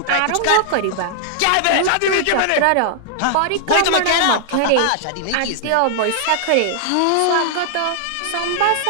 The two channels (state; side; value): different; both; correlation -0.01